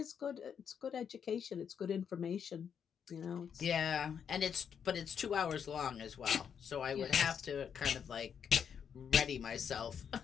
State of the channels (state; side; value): quieter; right; 7.6 dB